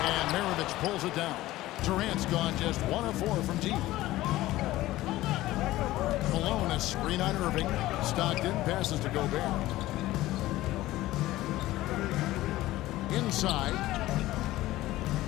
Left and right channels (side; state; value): right; quieter; 16.6 dB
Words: And Maravich pulls it down. Durant's gone just 1 of 4 from deep. Malone, a screen on Irving. Stockton passes to Gobert. Inside.